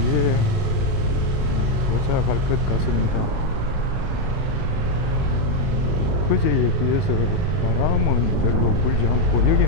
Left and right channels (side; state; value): right; late; 38 ms